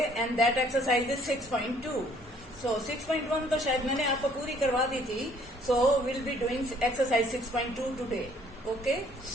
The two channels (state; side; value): normal; both; correlation 0.60